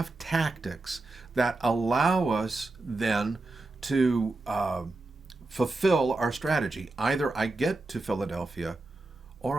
tactics that allow us then to fulfill our strategy. Either I get to Philadelphia or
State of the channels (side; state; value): left; quieter; 3.1 dB